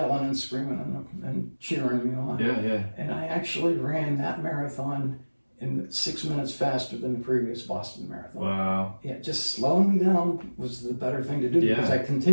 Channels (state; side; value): inverted; both; correlation -1.00